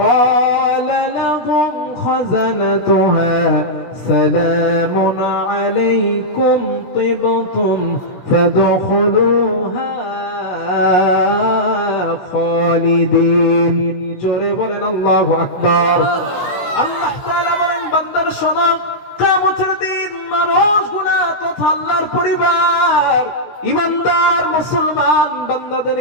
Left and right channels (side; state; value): right; late; 16 ms